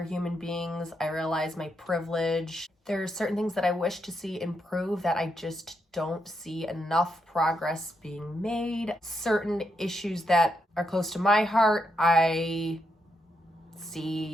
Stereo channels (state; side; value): normal; both; correlation 0.81